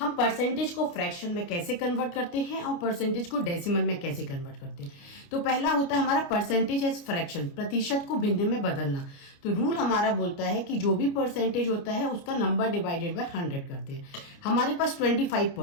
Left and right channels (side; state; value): right; late; 29 ms